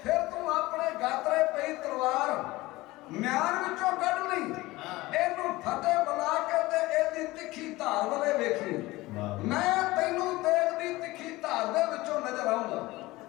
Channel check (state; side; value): quieter; right; 19.6 dB